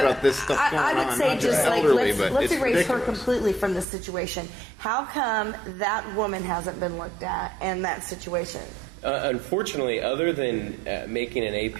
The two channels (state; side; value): drops out; left; at 3.9 s